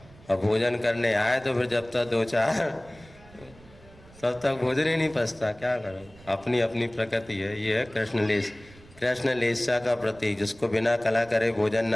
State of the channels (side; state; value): right; noise; rumble, 23 dB below the sound